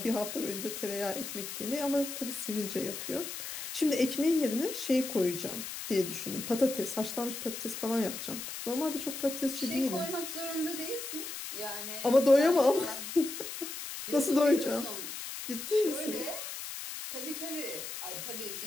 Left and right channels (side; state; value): left; noise; hiss, 7 dB below the sound